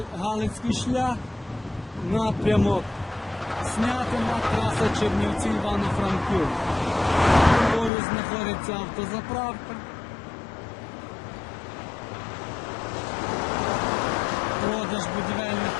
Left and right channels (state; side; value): drops out; right; at 7.9 s